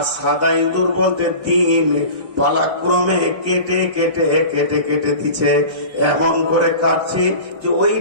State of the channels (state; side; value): late; left; 1.5 ms